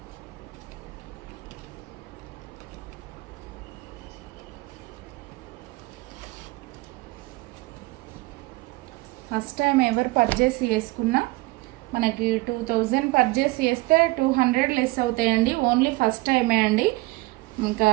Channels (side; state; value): left; quieter; 22.4 dB